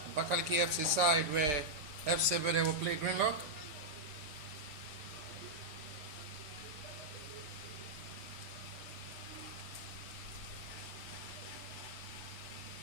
Bakaliki FC side where FC Bede will play Greenlock.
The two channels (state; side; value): late; left; 6.6 ms